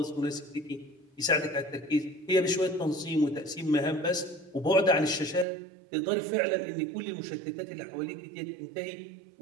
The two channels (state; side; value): drops out; left; at 5.5 s